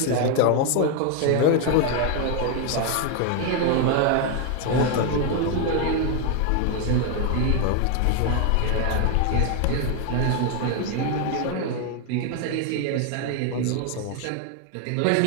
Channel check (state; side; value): different; both; correlation 0.01